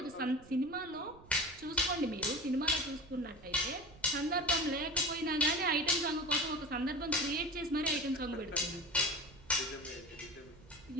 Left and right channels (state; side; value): noise; right; rumble, 22 dB below the sound